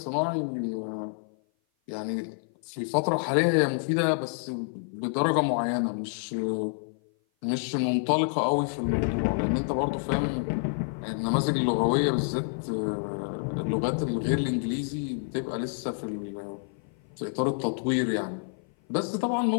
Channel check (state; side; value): silent; right; 56 dB below the other